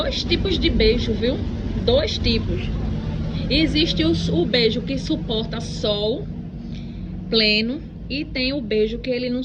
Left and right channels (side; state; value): both; identical; correlation 1.00